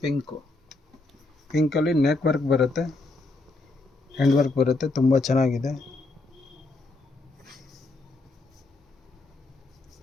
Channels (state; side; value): quieter; right; 3.2 dB